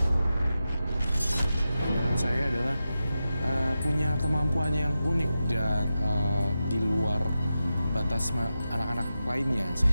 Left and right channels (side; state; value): both; inverted; correlation -0.91